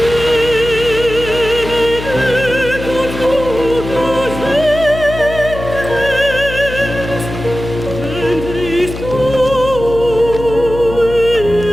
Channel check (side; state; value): left; noise; hum, 9 dB below the sound